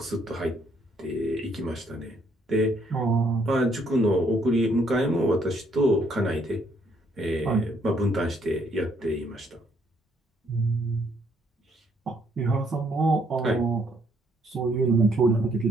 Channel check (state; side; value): normal; both; correlation 0.69